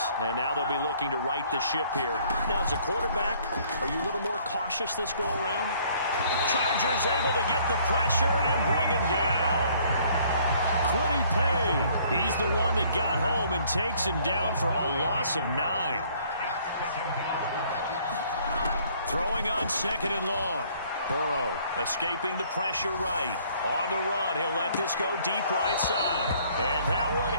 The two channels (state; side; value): inverted; both; correlation -0.60